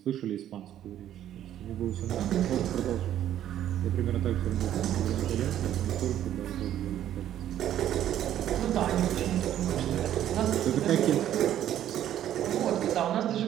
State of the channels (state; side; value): quieter; left; 11.5 dB